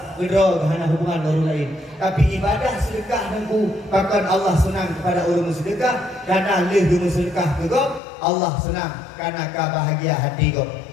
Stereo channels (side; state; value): right; drops out; at 8.0 s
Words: Kedrot hana hubungan dengan orang lain. Tapi ibadah sedekah nengku bahkan Allah senang kepada orang sedekah kerana lebih sedekah kegok Allah senang kerana bahagia hati kau.